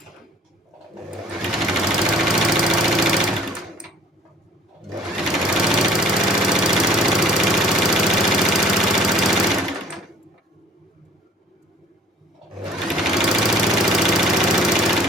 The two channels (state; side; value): normal; both; correlation 0.51